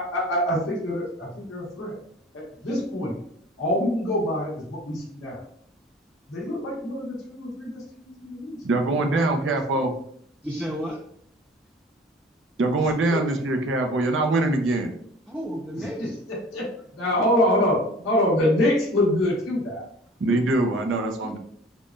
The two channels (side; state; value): both; normal; correlation 0.46